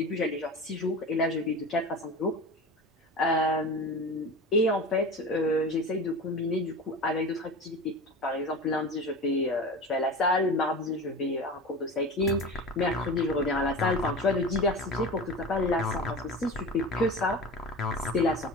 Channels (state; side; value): normal; both; correlation 0.31